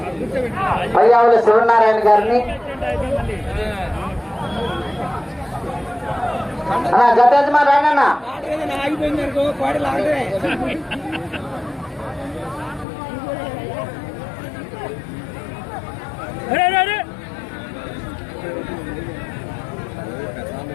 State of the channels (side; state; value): right; drops out; at 12.9 s